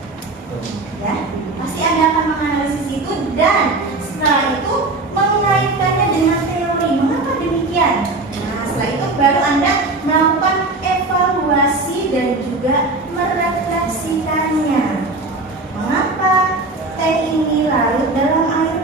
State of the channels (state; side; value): quieter; left; 3.2 dB